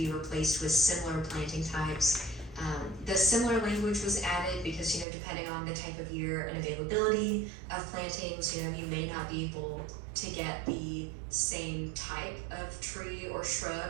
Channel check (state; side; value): drops out; left; at 5.1 s